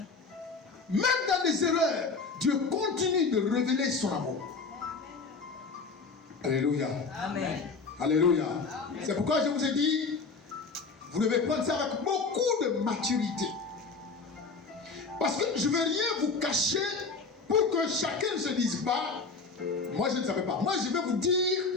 Même dans les erreurs, Dieu continue de révéler son amour. Alléluia. Amen. Alléluia. C'est pourquoi je vous ai dit, vous devez prendre ça avec beaucoup de maturité. Parce que je ne veux rien vous cacher pour que chacun ne se dise pas, moi je ne savais pas. Moi je vais vous dire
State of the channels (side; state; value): right; quieter; 4.4 dB